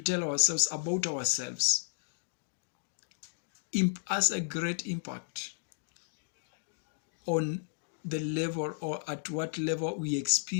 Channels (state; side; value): silent; right; digital silence